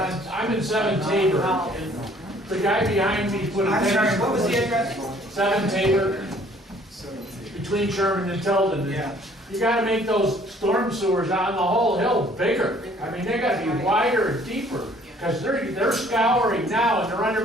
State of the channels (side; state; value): both; normal; correlation 0.58